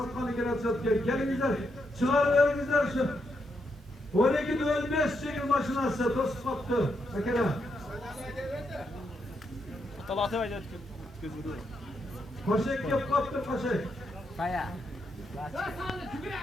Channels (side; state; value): both; normal; correlation 0.80